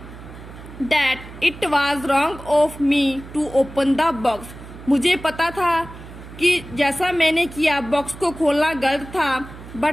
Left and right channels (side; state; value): right; noise; hum, 15 dB below the sound